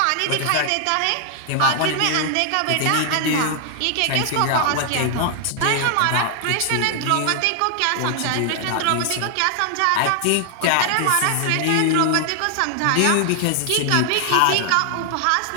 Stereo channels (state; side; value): different; both; correlation 0.00